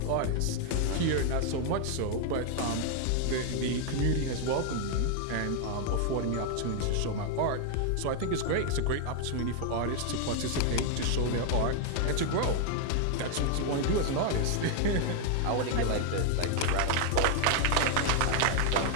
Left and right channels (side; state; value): both; different; correlation 0.00